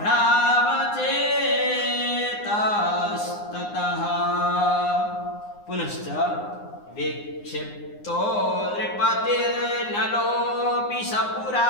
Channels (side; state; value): right; late; 9.7 ms